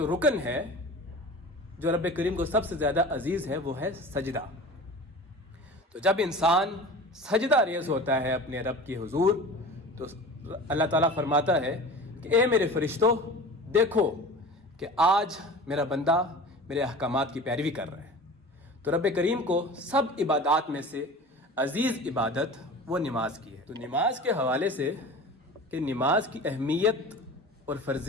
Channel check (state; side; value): normal; both; correlation 0.37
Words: رکن ہے جو رب کریم کو سب سے زیادہ عزیز ہے، وہ ہے سجدہ۔ تو جب انسان سجدہ ریز ہوتا ہے اپنے رب کی حضور، تو اللہ تعالیٰ فرماتا ہے کہ اے میرے فرشتوں، دیکھو کہ آج میرا بندہ میرے احکامات کی پیروی کر رہا ہے۔ تو رب کریم کو سب عبادات میں سے عزیز عبادت وہ نماز کی ہے۔ تو نماز کے حوالے سے کہ نماز کی اہمیت اور